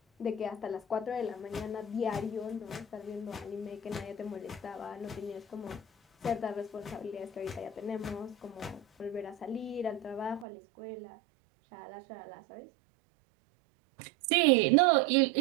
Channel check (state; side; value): drops out; left; at 10.5 s